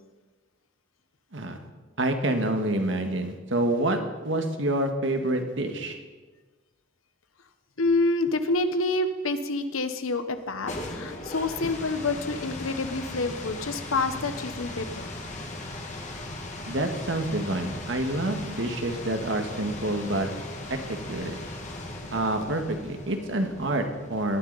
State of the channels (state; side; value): normal; both; correlation 0.26